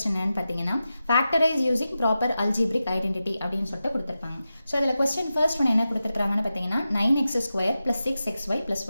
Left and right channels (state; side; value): inverted; both; correlation -0.92